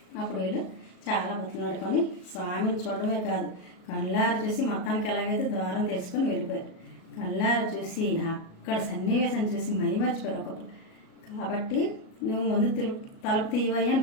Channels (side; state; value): right; late; 37 ms